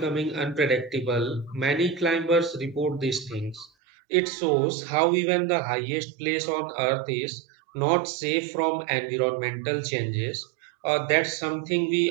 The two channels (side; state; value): left; drops out; at 3.7 s